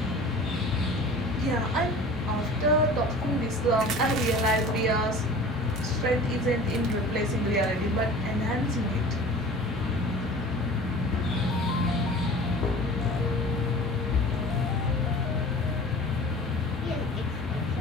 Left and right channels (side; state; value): both; normal; correlation 0.41